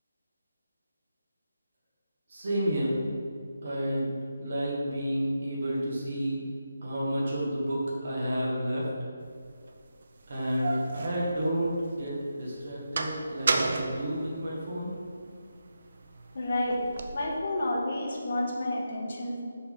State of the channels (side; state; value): both; inverted; correlation -0.87